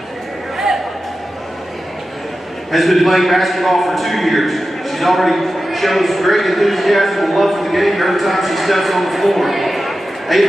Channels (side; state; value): both; normal; correlation 0.93